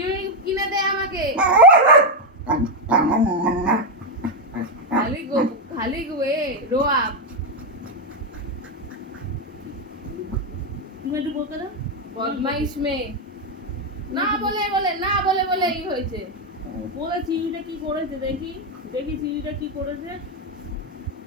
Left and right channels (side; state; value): both; normal; correlation 0.04